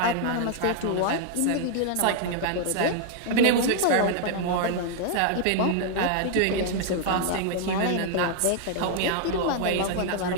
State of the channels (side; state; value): both; different; correlation 0.00